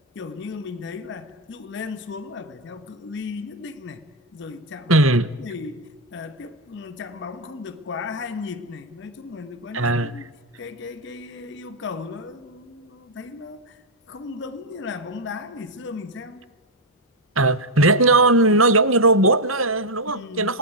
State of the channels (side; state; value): both; normal; correlation -0.01